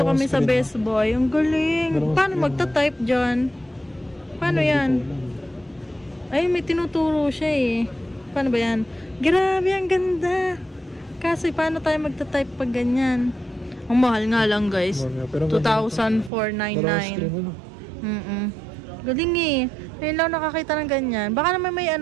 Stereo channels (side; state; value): left; drops out; at 16.3 s